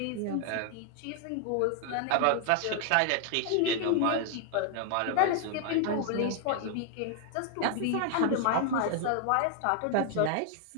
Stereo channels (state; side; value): different; both; correlation 0.00